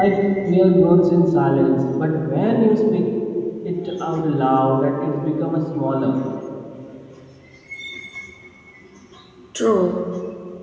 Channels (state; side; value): identical; both; correlation 1.00